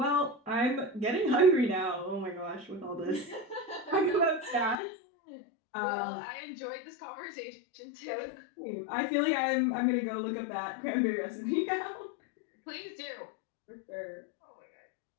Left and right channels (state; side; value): drops out; right; at 4.8 s